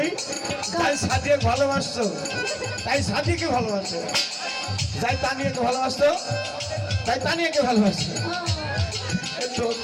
তাই সাদিয়াকে ভালোবাসতো, তাই সাদিয়াকে ভালোবাসতো, যাই তানিয়াকে ভালোবাসতো, তাই তানিয়াকে ভালোবাসতো। তো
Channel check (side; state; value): both; identical; correlation 1.00